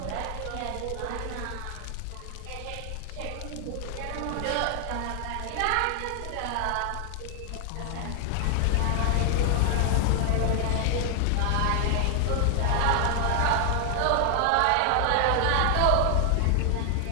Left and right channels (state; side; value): different; both; correlation 0.00